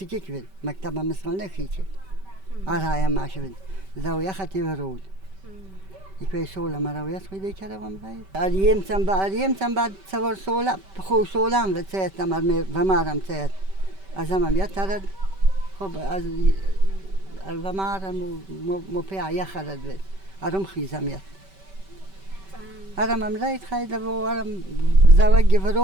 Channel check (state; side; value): late; left; 5.2 ms